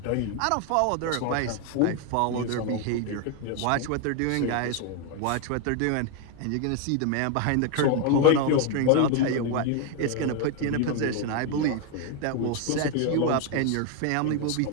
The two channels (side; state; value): both; different; correlation 0.01